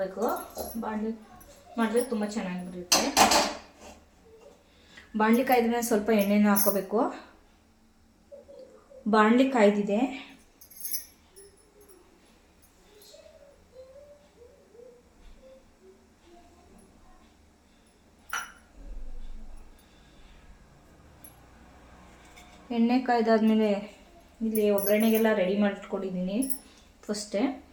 ಬಾಣಲಿ ಮಾಡಿದ್ರೆ ತುಂಬ ಚೆನ್ನಾಗಿರುತ್ತೆ. ಬಾಣಲಿ ಕಾಯ್ದ ಮೇಲೆ ಸ್ವಲ್ಪ ಎಣ್ಣೆನ ಹಾಕ್ಕೋಬೇಕು. ಬಾಣಲಿ ಕಾಯ್ದಿದೆ. ಎಣ್ಣೆ ಕಾಯ್ದಾದ್ಮೇಲೆ ಇಲ್ಲಿ ಒಗ್ಗರಣೆಗೆಲ್ಲ ರೆಡಿ ಮಾಡಿಟ್ಕೊಂಡಿದ್ದೀನಿ. ಫಸ್ಟೇ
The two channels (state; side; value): identical; both; correlation 1.00